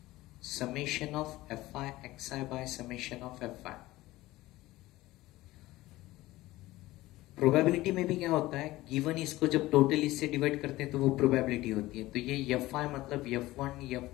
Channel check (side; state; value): right; quieter; 17.8 dB